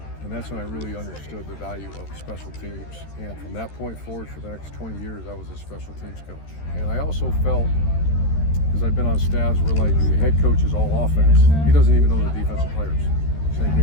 And that's when I really understood the value of special teams. And from that point forward, for the next 20 years, I was a special teams coach. And I also felt, because I've been on staffs where like the head coach is all offense, he doesn't even know the defensive players. Same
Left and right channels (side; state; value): right; late; 13 ms